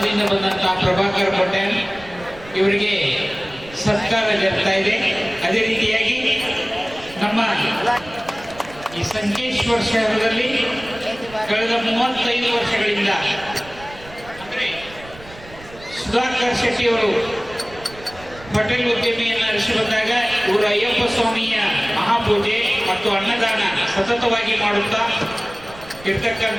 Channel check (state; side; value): noise; right; rumble, 19 dB below the sound